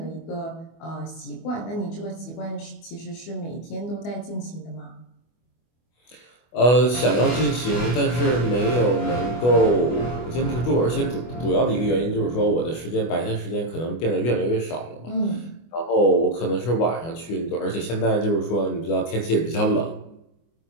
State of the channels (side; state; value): right; late; 24 ms